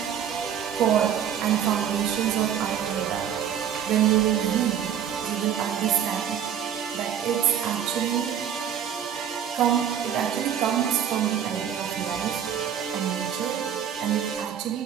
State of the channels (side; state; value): left; quieter; 9.0 dB